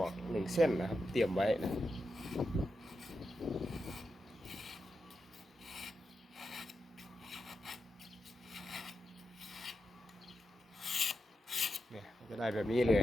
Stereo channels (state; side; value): normal; both; correlation 0.88